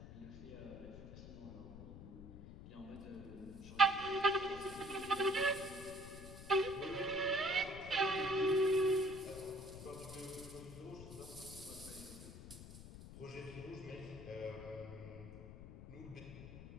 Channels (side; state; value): left; noise; rumble, 13 dB below the sound